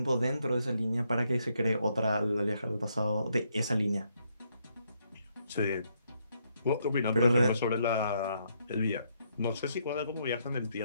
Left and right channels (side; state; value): both; inverted; correlation -0.75